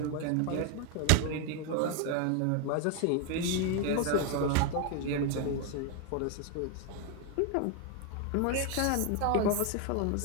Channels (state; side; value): different; both; correlation 0.01